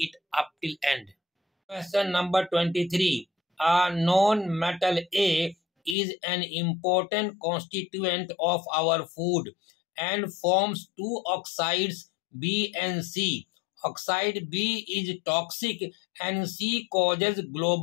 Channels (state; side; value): drops out; right; at 6.0 s